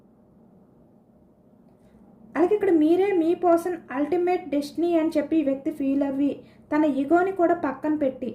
అలాగే ఇక్కడ మీరే మీ పర్సన్ అల్టిమేట్ డెస్టినీ అని చెప్పి వ్యక్తి ఫీల్ అవ్వి తన ఈగోని కూడా పక్కన పెట్టి,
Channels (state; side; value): identical; both; correlation 1.00